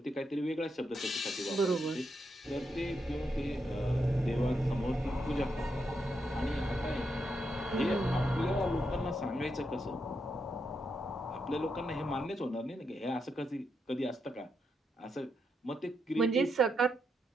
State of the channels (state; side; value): normal; both; correlation 0.82